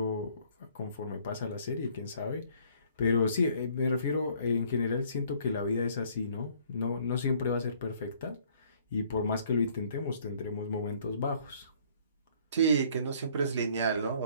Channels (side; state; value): both; inverted; correlation -0.60